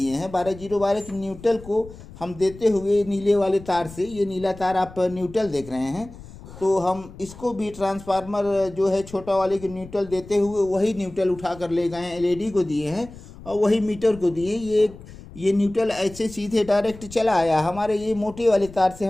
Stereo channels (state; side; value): noise; left; rumble, 17 dB below the sound